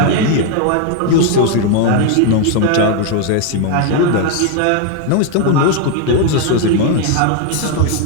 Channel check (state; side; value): different; both; correlation 0.01